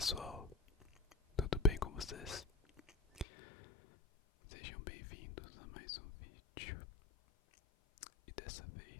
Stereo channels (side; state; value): right; drops out; at 3.2 s